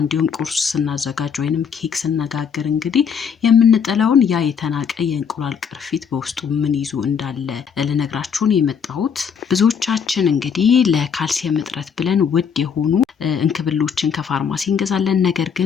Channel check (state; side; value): quieter; right; 6.9 dB